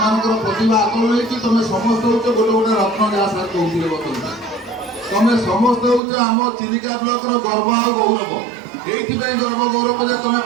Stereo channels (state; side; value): drops out; left; at 6.0 s